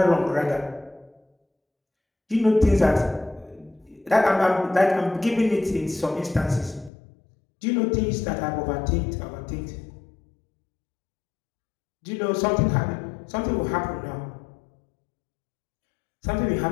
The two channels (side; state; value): right; drops out; at 6.9 s